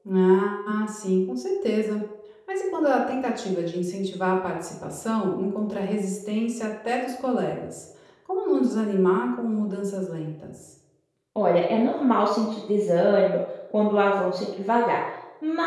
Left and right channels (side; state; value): both; identical; correlation 1.00